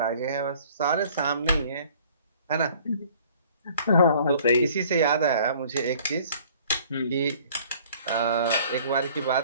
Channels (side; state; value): both; inverted; correlation -0.54